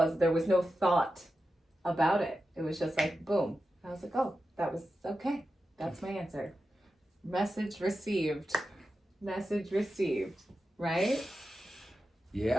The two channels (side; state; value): both; normal; correlation 0.91